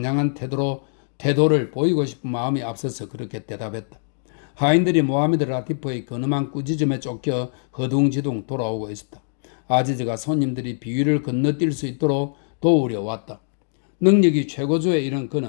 태도를 보이고 싶은 마음이 앞서서 그렇게 대답했다. 하인들이 모하메드 라티프의 근엄한 꾸짖음에 쫓겨 허둥지둥 돌아오고 있었다. 아지즈가 손님들이 비위를 건너뛸 수 있도록 도우려 왔다. 능력이 최고조에 이른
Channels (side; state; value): right; silent; digital silence